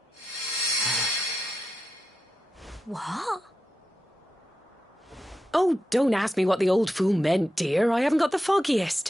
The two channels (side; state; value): both; normal; correlation 0.89